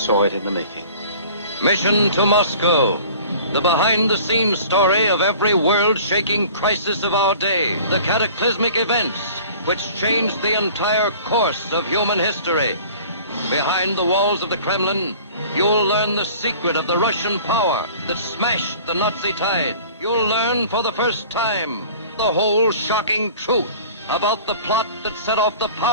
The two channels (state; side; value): inverted; both; correlation -0.46